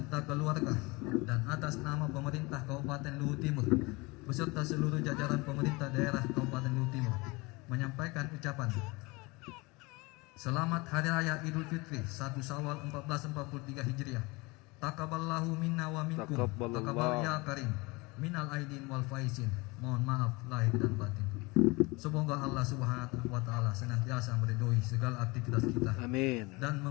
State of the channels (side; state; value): right; quieter; 25.1 dB